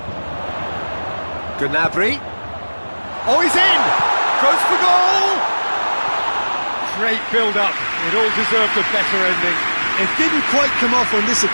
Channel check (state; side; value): inverted; both; correlation -1.00